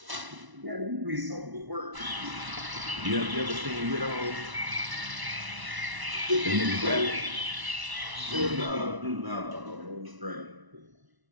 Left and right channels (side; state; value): left; late; 1.0 ms